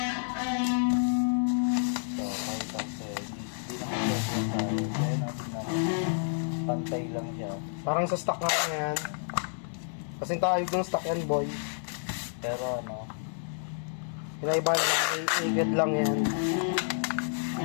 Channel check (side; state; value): right; silent; digital silence